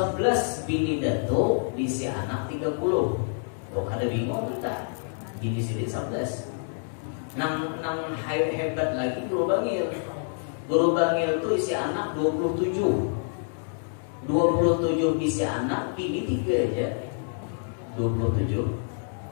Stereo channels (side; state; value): right; silent; digital silence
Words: bini Datu bisi anak 30. Tuh ada bingung kita. Bini sini 11. Nang hebat lagi Guru Bangil. Guru Bangil itu isi anak 27. 27 isi anak, bini 3 aja. 27.